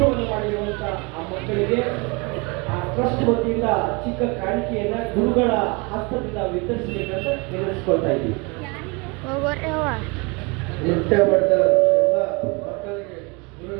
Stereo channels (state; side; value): quieter; left; 28.8 dB